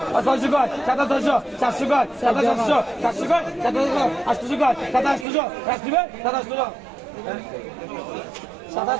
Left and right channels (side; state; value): left; drops out; at 5.2 s